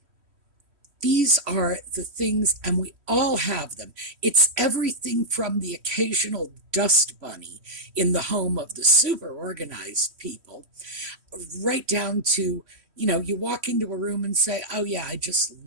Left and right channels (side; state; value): left; late; 3.1 ms